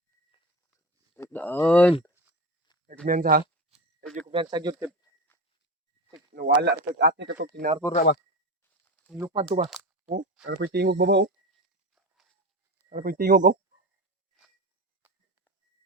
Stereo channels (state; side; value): normal; both; correlation 0.26